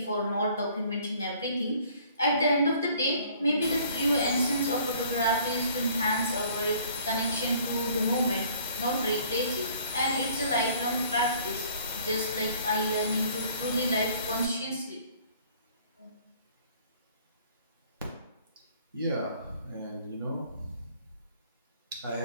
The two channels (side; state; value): both; inverted; correlation -0.56